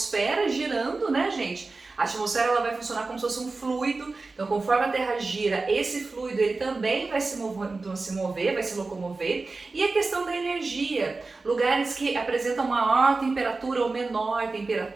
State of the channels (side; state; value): left; quieter; 3.7 dB